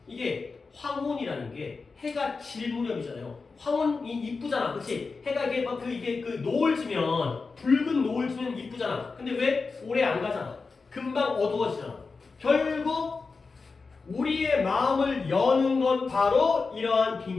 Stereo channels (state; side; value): quieter; right; 4.4 dB